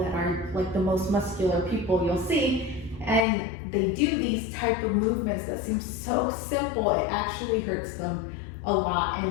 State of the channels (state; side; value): drops out; right; at 3.2 s